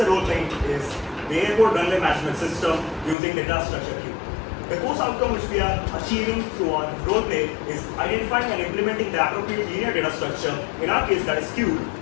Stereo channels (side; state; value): right; drops out; at 3.2 s